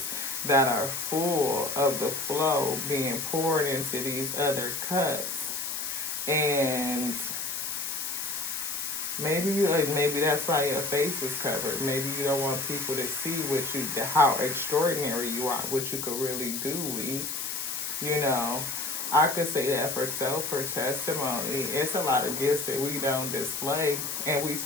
that are full of the flow being poured into these other cups. And maybe that's why your face is covered. Maybe you don't want people to see how extraordinary you are, what you could really do. I could say that for testimony. It's a lot of gifts that we don't display, and we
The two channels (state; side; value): noise; left; hiss, 4 dB below the sound